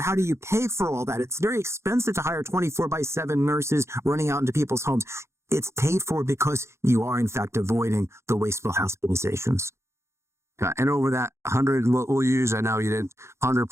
how do you pay for all that? It's very expensive to hire 24/7 nurses running out into people's homes. It's paid for because you are, in fact, avoiding the wasteful hospitalizations. And over that 100, we'll use, I know you did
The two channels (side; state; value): left; late; 0.13 ms